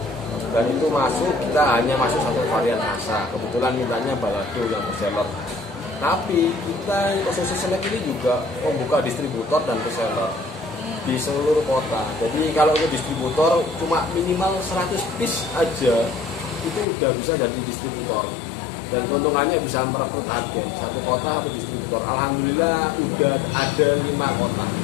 Dan itu kita hanya masuk satu varian rasa. Kebetulan mintanya balado yang bestseller. Tapi kita Ususé Snack ini juga membuka distributor dan reseller di seluruh kota. Jadi kalau untuk distributor cuma minimal 100 piece aja itu udah bisa jadi distributor. Dan keuntungannya bisa merekrut agen satu kota satu distributor. Alhamdulillah udah ada 5 kota.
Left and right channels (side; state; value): right; drops out; at 16.9 s